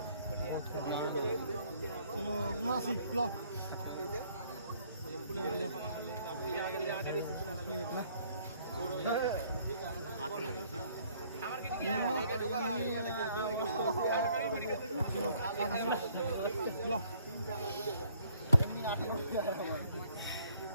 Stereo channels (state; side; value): inverted; both; correlation -0.62